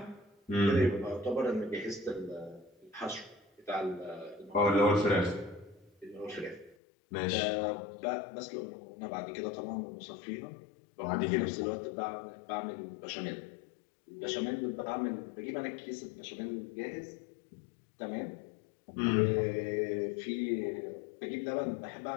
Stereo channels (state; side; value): drops out; right; at 6.8 s